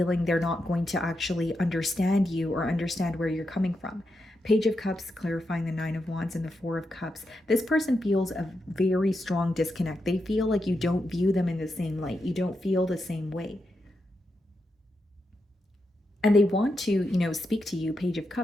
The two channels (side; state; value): both; normal; correlation 0.86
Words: they're not going to actually understand you or understand where you're coming from. Page of Cups clarifying the Nine of Wands and the Four of Cups. This person feels a very strong disconnect. They feel like you don't view them in the same light. You don't feel the same way. And they want to, speak to you, Page of